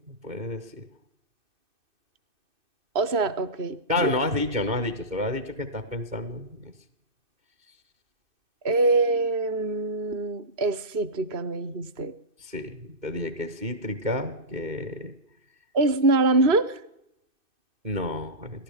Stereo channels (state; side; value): late; left; 2.6 ms